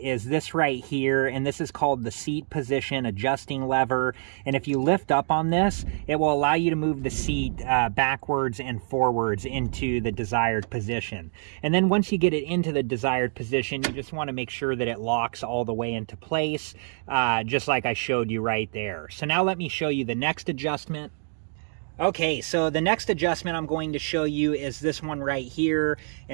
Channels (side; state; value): left; silent; digital silence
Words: this right here, and this is called the seat position adjusting lever. And if you lift up on this, it will allow you to move the seat backwards and forwards into the desired position. And then once you get it into the desired position, you just want to make sure that it locks all the way into place, just like I showed you right there. So now let me show you the next adjustment. Okay, so the next adjustment I'm going to show you is this one right here,